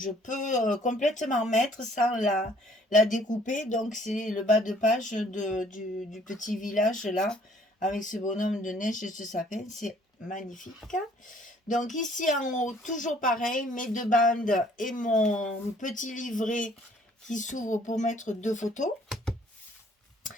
peux complètement mettre sans la découper. Donc c'est le bas de page du petit village là, avec ce bonhomme de neige et ce sapin. C'est magnifique. Donc ici en haut, toujours pareil, mes deux bandes et mon petit livret qui s'ouvre pour mettre 2 photos.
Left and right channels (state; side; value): normal; both; correlation 0.59